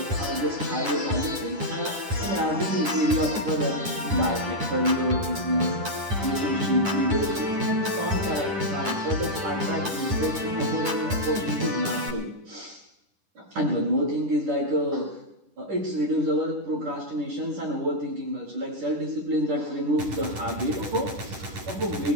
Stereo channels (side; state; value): left; late; 10 ms